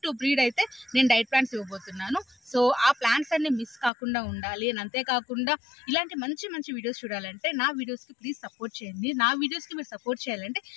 టు బ్రీడ్ అయితే నేను డైట్ ప్లాన్స్ ఇవ్వబోతున్నాను. సో ఆ ప్లాన్స్ అన్ని మిస్ కాకుండా ఉండాలి. అని అంతేకాకుండా ఇలాంటి మంచి మంచి వీడియోస్ చూడాలంటే నా వీడియోస్కి ప్లీజ్ సపోర్ట్ చేయండి. నా వీడియోస్కి మీరు సపోర్ట్ చేయాలంటే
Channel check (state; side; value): drops out; right; at 3.9 s